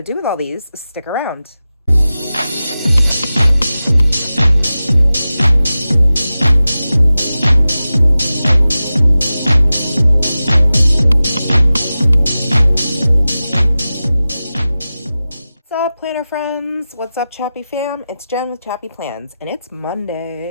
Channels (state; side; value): inverted; both; correlation -0.94